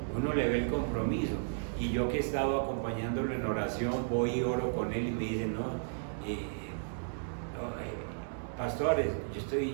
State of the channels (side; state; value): left; silent; digital silence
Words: uno le ve el compromiso. Y yo que he estado acompañándolo en oración, voy y oro con él y me dice, pastores, yo